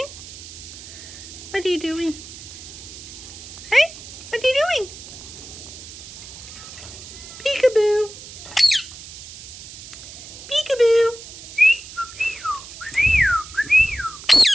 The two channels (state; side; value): noise; right; hiss, 14 dB below the sound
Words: What are you doing? Hey? What are you doing? Peekaboo! Peekaboo!